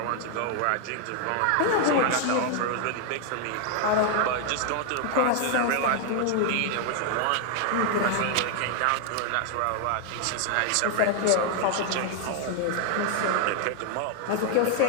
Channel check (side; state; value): both; different; correlation 0.00